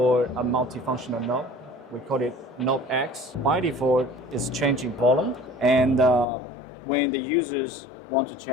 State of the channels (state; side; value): drops out; right; at 6.2 s